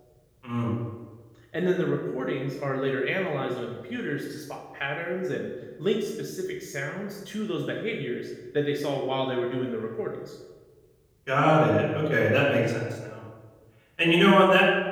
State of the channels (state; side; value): identical; both; correlation 1.00